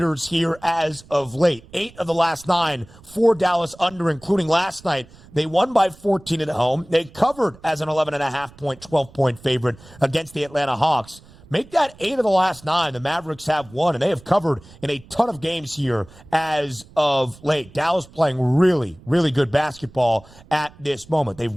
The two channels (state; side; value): noise; right; rumble, 23 dB below the sound